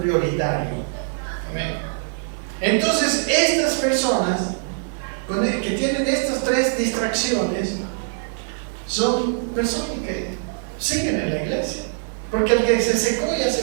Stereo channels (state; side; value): silent; left; digital silence